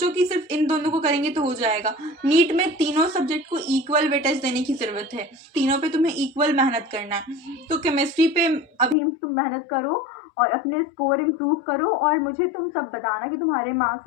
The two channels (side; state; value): right; drops out; at 9.0 s